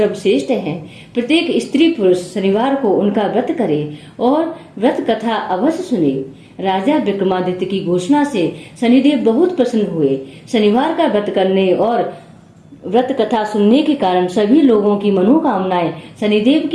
हैं। प्रत्येक स्त्री पुरुष शनिवार को उनका व्रत करे और व्रत कथा अवश्य सुने। राजा विक्रमादित्य की घोषणा से शनिदेव बहुत प्रसन्न हुए। शनिवार का व्रत करने और व्रत कथा सुनने के कारण सभी लोगों की मनोकामनाएं शनिदेव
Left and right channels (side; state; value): both; identical; correlation 1.00